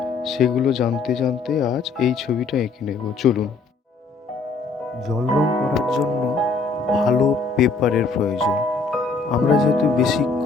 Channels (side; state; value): right; quieter; 4.3 dB